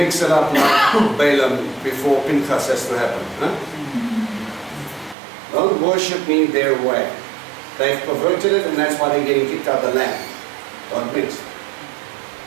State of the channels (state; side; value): drops out; left; at 5.2 s